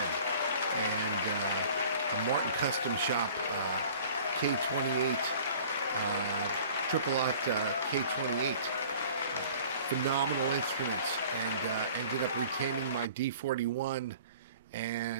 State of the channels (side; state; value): both; inverted; correlation -0.47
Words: and a Martin Custom Shop K28, Triple Lot K28. Phenomenal instruments, and ended up retaining my D41